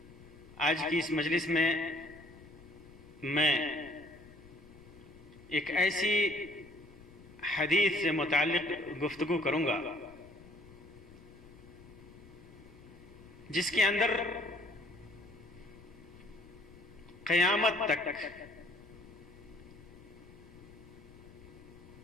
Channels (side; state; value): left; noise; rumble, 21 dB below the sound